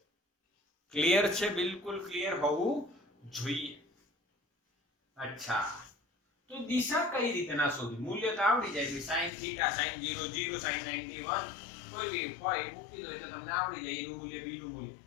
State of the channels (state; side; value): drops out; right; at 9.3 s